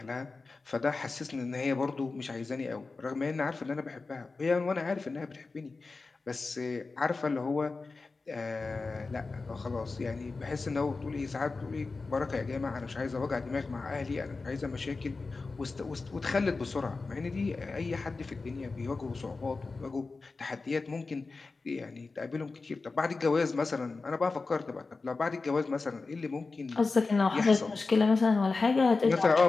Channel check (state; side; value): quieter; right; 3.9 dB